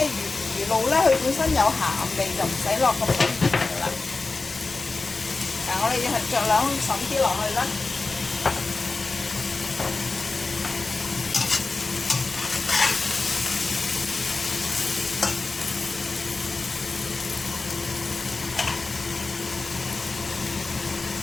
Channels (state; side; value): quieter; right; 3.7 dB